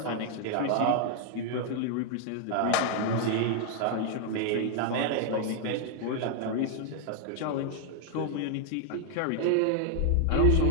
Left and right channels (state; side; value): different; both; correlation 0.00